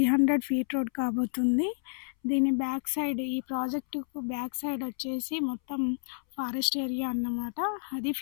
ఫీట్ రోడ్ కాబోతుంది. దీని బ్యాక్ సైడ్, ఈ ప్రాజెక్టుకు బ్యాక్ సైడ్ వచ్చేసి మొత్తం ఫారెస్ట్ ఏరియా అన్నమాట. అది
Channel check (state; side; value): silent; right; 58 dB below the other